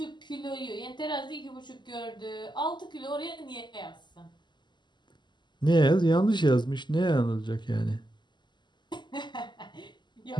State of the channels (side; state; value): right; late; 0.21 ms